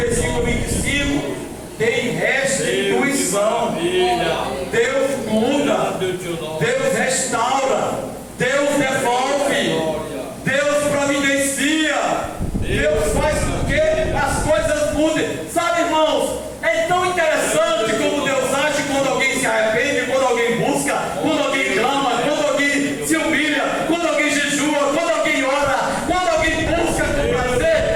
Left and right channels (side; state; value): both; identical; correlation 1.00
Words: 25 tem restituição. Deus muda, Deus restaura, Deus devolve, Deus providencia, Deus faz com que as coisas mudem. Sabe, irmãos, é tão interessante como Deus age quando alguém se arrepende, quando alguém busca, quando alguém clama, quando alguém se humilha, quando alguém jejua, quando alguém ora, quando alguém busca com